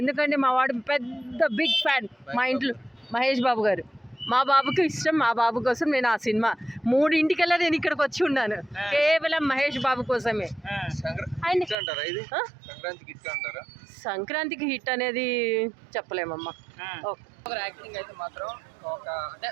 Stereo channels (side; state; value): left; drops out; at 11.8 s